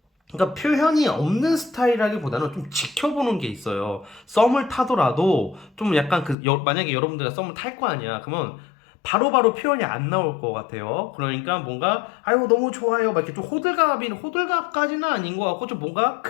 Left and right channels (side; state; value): right; drops out; at 6.4 s